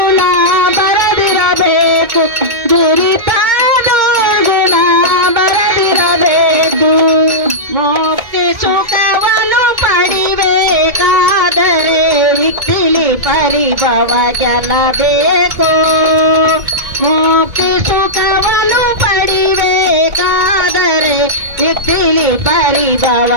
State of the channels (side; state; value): left; late; 2.2 ms